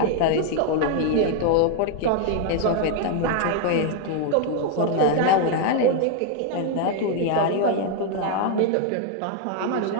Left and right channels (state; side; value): different; both; correlation 0.00